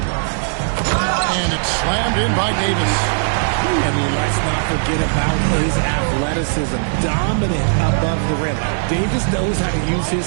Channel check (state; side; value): silent; left; digital silence